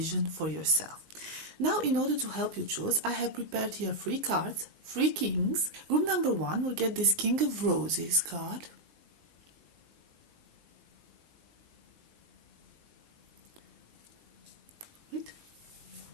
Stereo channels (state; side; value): late; left; 19 ms